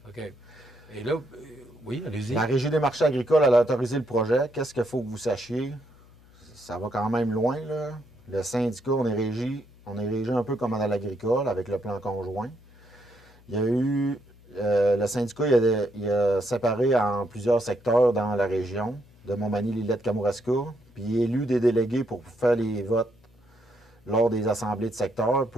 OK. Et là, oui, allez-y. La Régie des marchés agricoles, elle a autorisé le projet. Qu'est-ce qu'il faut que vous sachiez? Ça va quand même loin, là. Le syndicat, on est régi un peu comme dans l'agricole, avec le plan conjoint. Il y a eu... le syndicat, il a séparé en plusieurs secteurs dans la région, de Montmagny-Lillette-Kamouraska, puis il a élu des délégués pour faire les votes lors des assemblées de secteur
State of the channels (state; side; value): noise; left; hum, 26 dB below the sound